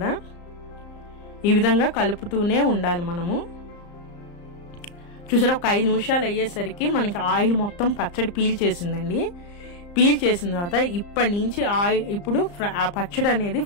ఈ విధంగా కలుపుతూనే ఉండాలి మనము. చూసారా, ఒక 5 నిమిషాలు అయ్యేసరికి మనకి ఆయిల్ మొత్తం పచ్చడి పీల్చేసిందండి. పీల్చేసిన తర్వాత ఇప్పటి నుంచి ఇప్పుడు ఆ పచ్చడి అనేది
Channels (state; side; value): late; right; 34 ms